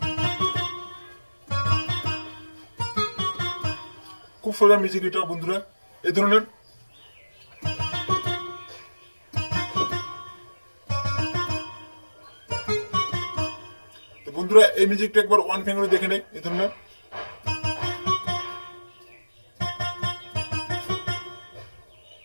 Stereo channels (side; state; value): both; inverted; correlation -1.00